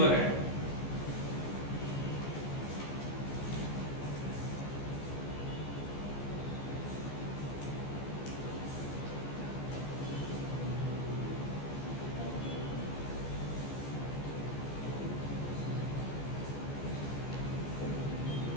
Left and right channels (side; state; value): right; late; 14 ms